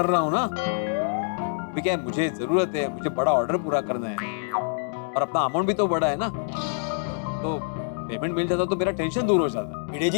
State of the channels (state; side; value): silent; right; digital silence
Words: रहा हूँ ना। अभी क्या है, मुझे जरूरत है, मुझे बड़ा ऑर्डर पूरा करना है और अपना अमाउंट भी तो बड़ा है ना, तो पेमेंट मिल जाता तो मेरा टेंशन दूर हो जाता। भिड़े